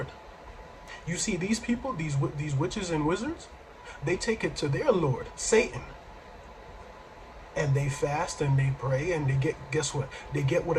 You see, these people, these witches and wizards, they take it to their Lord, Satan. And they fast and they pray and they get, guess what? They get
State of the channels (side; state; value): both; identical; correlation 1.00